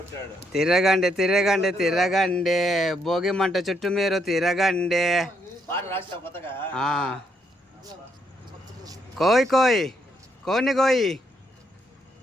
తిరగండి తిరగండి తిరగండి, భోగి మంట చుట్టూ మీరు తిరగండి. కోయ్ కోయ్ కోని కోయి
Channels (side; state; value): both; normal; correlation 0.75